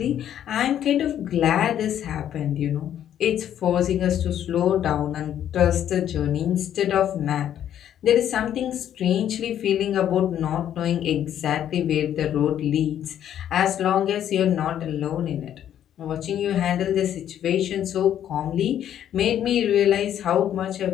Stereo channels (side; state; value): right; quieter; 10.5 dB